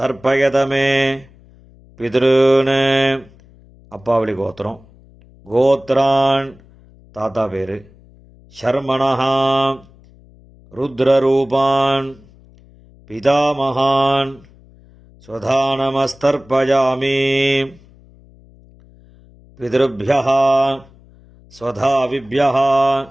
பித்ருன். அப்பாவளி கோத்திரம். கோத்ரான் தாத்தா பேர். ஷர்மணः ருத்ரரூபான் பிதாமகான் ஸ்வதானமஸ்தர்ப்பயாமி. பிதృभ्यः ஸ்வதாவிभ्यः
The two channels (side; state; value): left; noise; hum, 26 dB below the sound